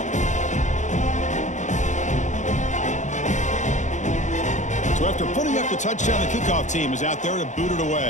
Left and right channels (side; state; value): right; late; 0.35 ms